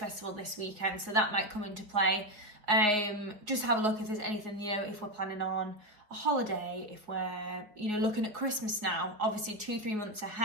this weekend, so that might come into play. Just have a look if there's anything, if we're planning on a holiday, if we're, looking at Christmas now, obviously 2-3 months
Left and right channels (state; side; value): late; left; 4.8 ms